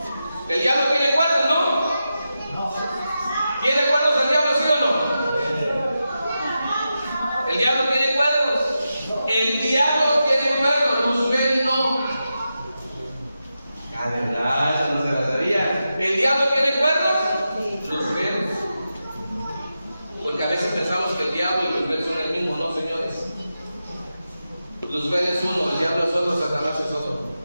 El diablo tiene cuernos, ¿no? ¿Tiene cuernos el diablo, sí o no? El diablo tiene cuernos. El diablo tiene cuernos. Luzbel no. Ah, de verdad, eso no se la sabía. ¿El diablo tiene cuernos? Luzbel. Porque a veces pensamos que el diablo y Luzbel son el mismo. No, señores. Luzbel es uno, el diablo es otro, Satanás es otro.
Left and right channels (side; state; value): both; inverted; correlation -0.90